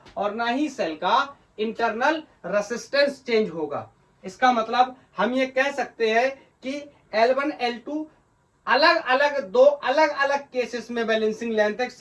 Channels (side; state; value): both; identical; correlation 1.00